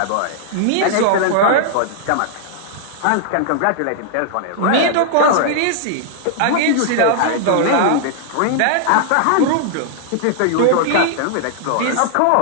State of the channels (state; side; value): different; both; correlation -0.01